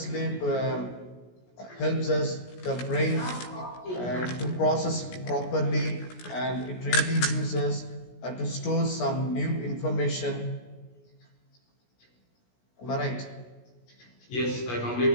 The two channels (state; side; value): late; right; 17 ms